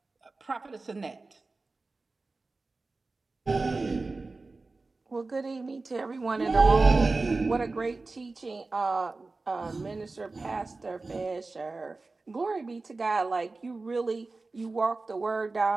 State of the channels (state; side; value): quieter; left; 3.6 dB